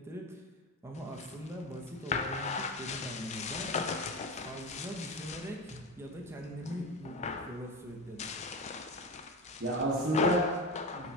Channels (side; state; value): both; normal; correlation 0.21